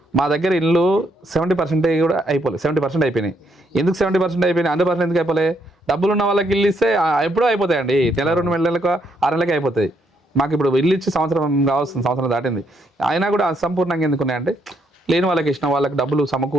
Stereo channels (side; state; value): both; normal; correlation 0.74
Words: మా దగ్గర ఇల్లు 70% కూడా అయిపోలేదు, 70% అయిపోయినాయి. ఎందుకు 70% అయిపోయినాయి, 100% ఎందుకు అయిపోలే? డబ్బులు ఉన్న వాళ్ళకి ఇల్లు ఇస్తే ఎప్పుడూ అయిపోతాయండి, నెల 2 నెలలకు 6 నెలలకి అయిపోతాయి. మాకు ఇప్పుడు ఇల్లు ఇచ్చి సంవత్సరం దాటింది, అయినా కూడా అసంపూర్ణంగా ఎందుకు ఉన్నాయంటే లేని వాళ్ళకి ఇచ్చిన వాళ్ళకి డబ్బులు